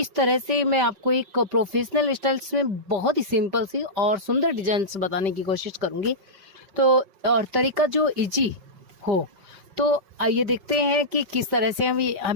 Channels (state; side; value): late; left; 5.1 ms